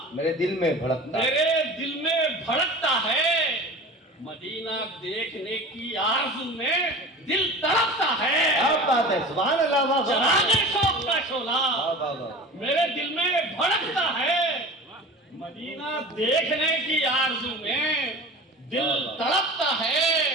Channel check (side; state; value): both; normal; correlation 0.37